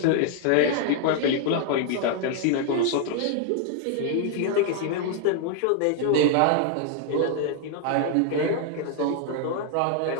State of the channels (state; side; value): different; both; correlation 0.00